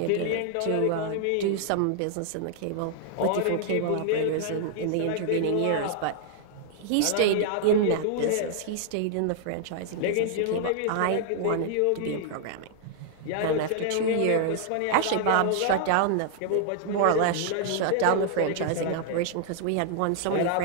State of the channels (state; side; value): different; both; correlation -0.01